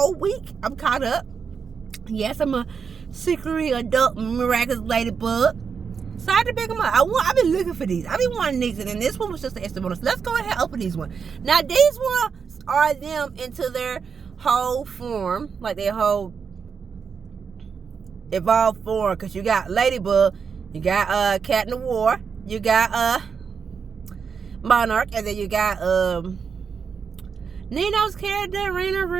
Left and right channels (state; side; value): quieter; left; 6.1 dB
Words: week. I'm caught up. Yes, I'm a secretly adult Miraculous Ladybug. So I had to pick them up. I've been looking for these. I've been wanting these, and then this one was just an extra bonus. Let's go ahead and open these ones. Now these ones are them into their whole form, like their whole evolved form. Because you got Ladybug, you got Cat in the War, you got Monarch, and then you got Nino's character, Raina